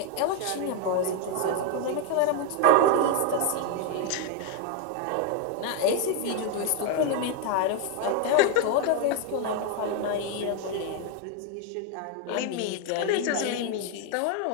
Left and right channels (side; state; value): both; different; correlation 0.01